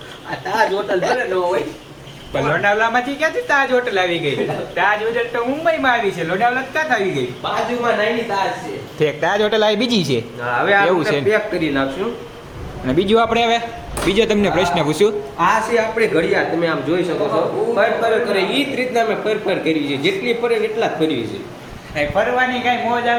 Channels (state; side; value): identical; both; correlation 1.00